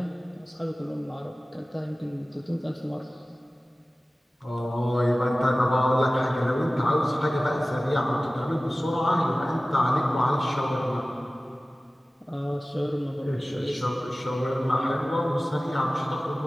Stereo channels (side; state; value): both; normal; correlation 0.97